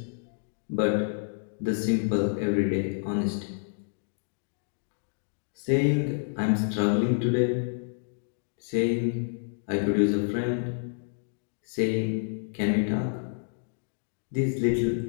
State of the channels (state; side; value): silent; right; digital silence